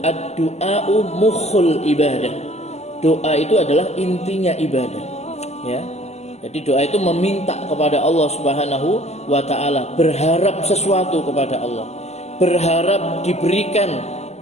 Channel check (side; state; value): right; late; 0.32 ms